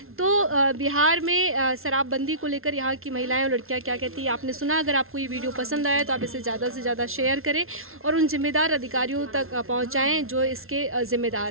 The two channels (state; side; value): late; left; 0.62 ms